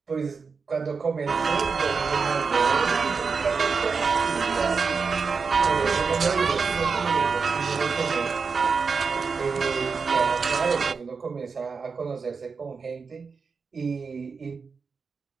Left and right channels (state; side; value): quieter; left; 5.1 dB